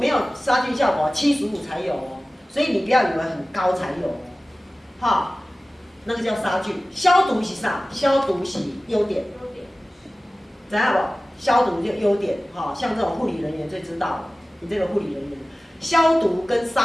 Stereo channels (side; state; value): both; normal; correlation 0.97